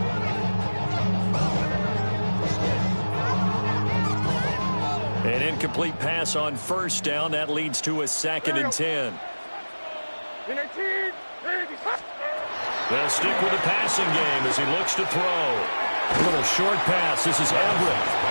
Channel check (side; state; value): both; inverted; correlation -1.00